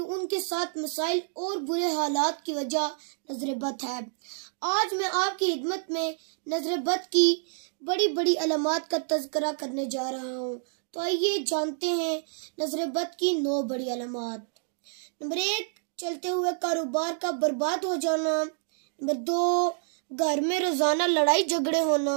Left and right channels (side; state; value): left; silent; digital silence